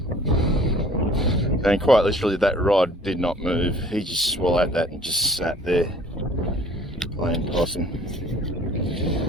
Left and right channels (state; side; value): normal; both; correlation 0.52